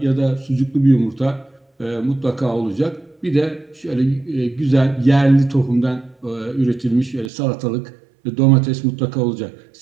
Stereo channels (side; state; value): left; drops out; at 7.3 s